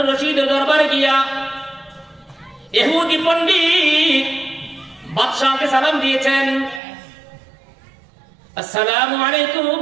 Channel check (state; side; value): drops out; left; at 6.8 s